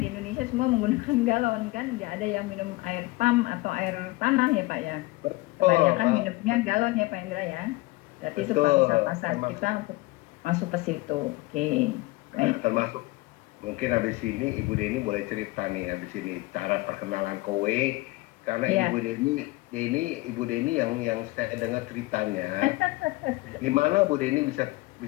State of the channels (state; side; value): quieter; right; 21.4 dB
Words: Indonesia semua menggunakan galon kan. Nggak ada yang minum air pump atau air tanah ya Pak ya. betul, Kebanyakan minumnya galon ya Pak Indra ya. Berarti itu pangsa betul, pasar termasuk kita untuk masuk ke situ. Oke. Baik. termasuk mungkin habis ini Ibu Deni boleh cerita nih habis ini cara perkenalan kowe, karena Iya. Ibu Deni yang saya dengar ceritanya gimana Bu Deni bisa